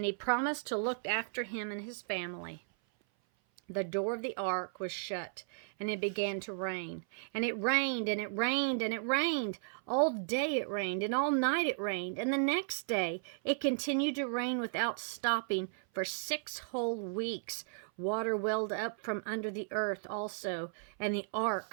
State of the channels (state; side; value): silent; left; 54 dB below the other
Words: he promised to look after him and his family. The door of the ark was shut, and it began to rain. And it rained, and it rained, and it rained. All day it rained, and all night it rained. And the next day it continued to rain without stopping for 6 whole weeks. Water welled up from under the earth also, and the